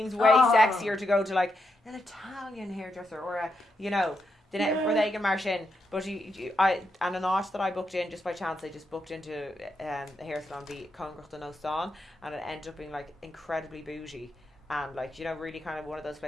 way sexier to go to like an Italian hairdresser or a, you know, where they can march in. But and an art that I booked in just by chance, I just booked into a hair salon be Congrach den Ostan, and it ended up being like incredibly bougie. And like, you know, really kind of one of those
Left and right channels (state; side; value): normal; both; correlation 0.83